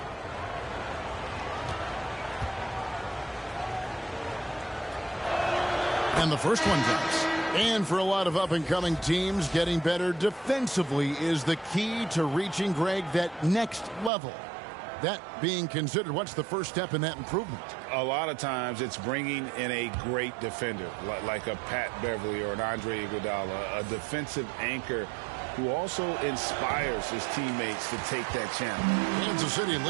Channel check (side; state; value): left; drops out; at 14.1 s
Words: And the first one drops. And for a lot of up-and-coming teams, getting better defensively is the key to reaching, Greg, that next level. That being considered, what's the first step in that improvement? A lot of times it's bringing in a great defender, like a Pat Beverly or an Andre Iguodala, a defensive anchor who also inspires his teammates to take that challenge. Kansas City